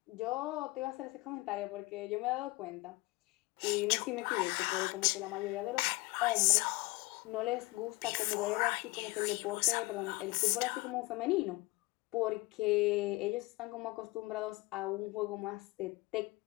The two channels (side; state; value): right; quieter; 22.8 dB